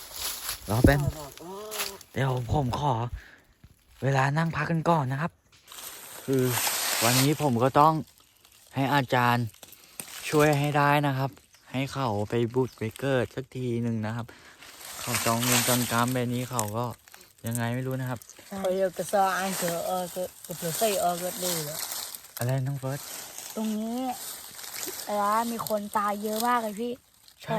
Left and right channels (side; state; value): both; identical; correlation 1.00